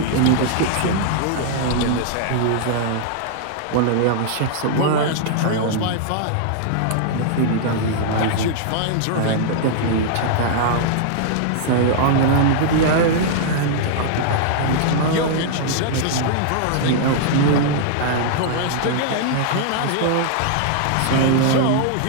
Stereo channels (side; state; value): both; different; correlation -0.01